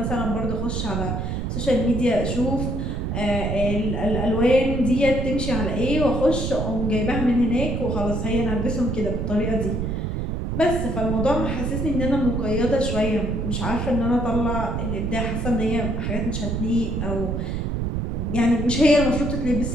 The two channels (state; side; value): noise; right; rumble, 2 dB below the sound